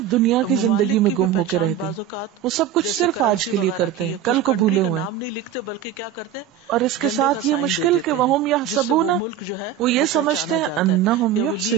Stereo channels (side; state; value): left; quieter; 9.2 dB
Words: ممالک کی بھی پہچان بعض اوقات جیسے کرنسی وغیرہ کی ہے، اس کنٹری کا نام نہیں لکھتے بلکہ کیا کرتے ہیں جھنڈے کا سائن دے دیتے ہیں جس سے وہ ملک جو ہے وہ پہچانا جاتا ہے، یا وہ